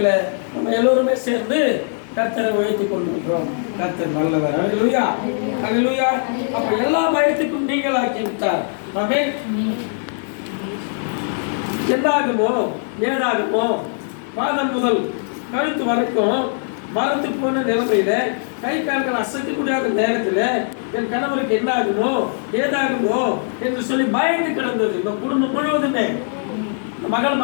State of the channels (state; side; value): silent; right; 65 dB below the other